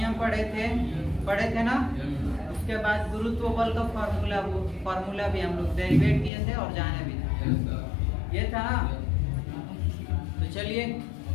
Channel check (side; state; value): right; drops out; at 6.3 s